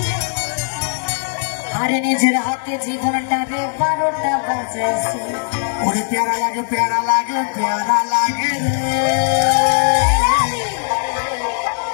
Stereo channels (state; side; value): silent; right; 67 dB below the other